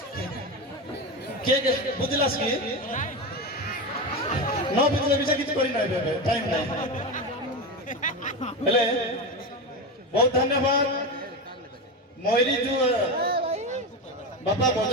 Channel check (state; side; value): normal; both; correlation 0.18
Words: के बुझलास कि न बुझले विषय किछ करि नै बेबे टाइम नै हेले बहुत धन्यवाद मोइरी जो बापा